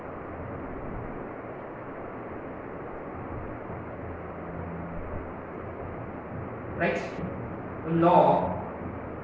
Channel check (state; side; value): identical; both; correlation 1.00